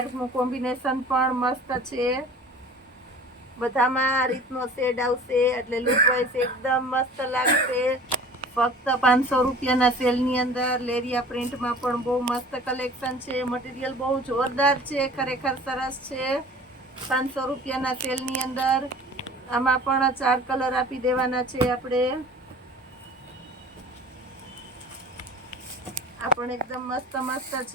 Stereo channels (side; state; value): both; normal; correlation 0.44